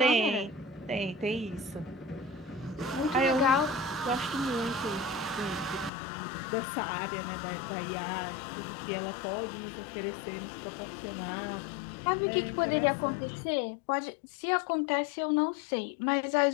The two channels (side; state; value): right; drops out; at 5.9 s